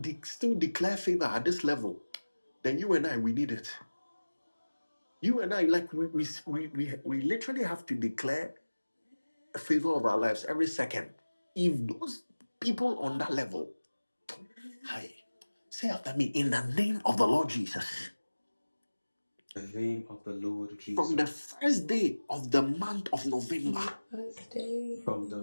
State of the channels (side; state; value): both; inverted; correlation -1.00